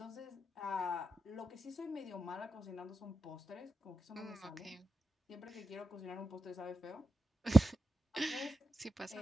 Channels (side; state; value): both; normal; correlation 0.89